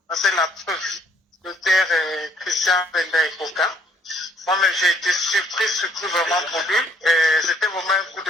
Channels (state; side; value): normal; both; correlation 0.64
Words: C'est la preuve. Le père Christian Penda et Coca. Moi-même, j'ai été surpris vraiment pour lui. C'était vraiment un coup de